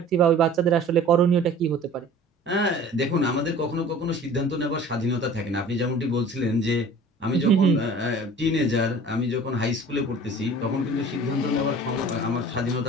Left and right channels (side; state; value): both; normal; correlation 0.45